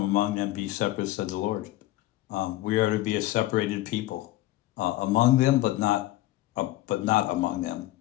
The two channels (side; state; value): right; quieter; 16.4 dB